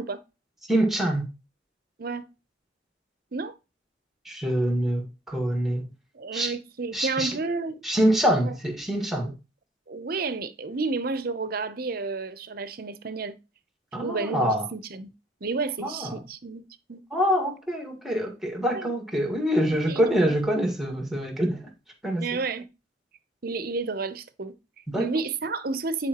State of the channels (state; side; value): normal; both; correlation 0.61